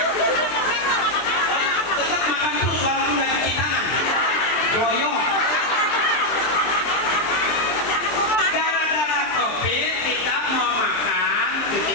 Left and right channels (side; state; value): right; late; 23 ms